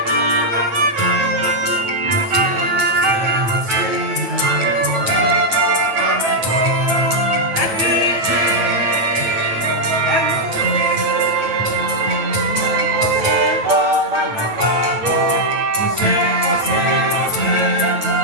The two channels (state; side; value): late; left; 8.9 ms